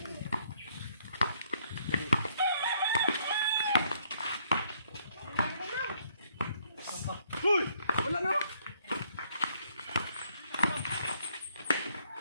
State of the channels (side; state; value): both; inverted; correlation -0.68